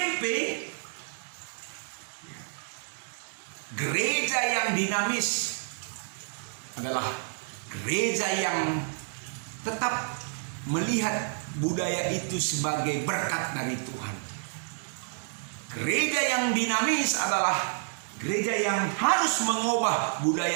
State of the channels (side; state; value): left; silent; digital silence